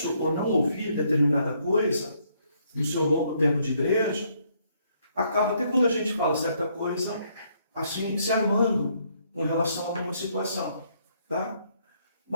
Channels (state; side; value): inverted; both; correlation -0.70